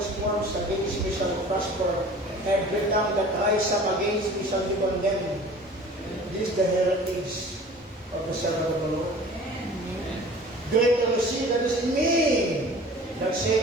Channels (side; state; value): both; normal; correlation 0.44